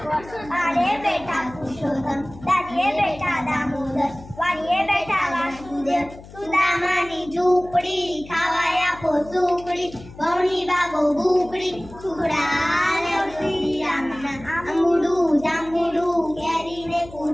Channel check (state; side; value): noise; left; hum, 18 dB below the sound